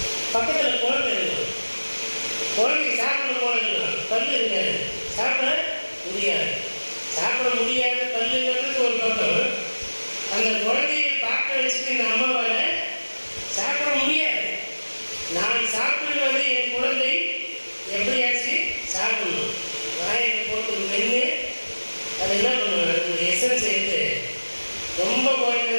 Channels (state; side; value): inverted; both; correlation -1.00